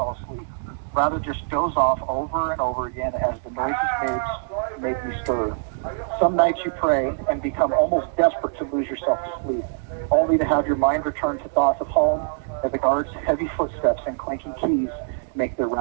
asleep. Rather just doze off over and over again as the noises make me stir. Some nights you pray and become almost desperate to lose yourself to sleep, only to have your mind return to thoughts of home as the guards' heavy footsteps and clanking keys make their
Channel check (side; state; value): left; silent; digital silence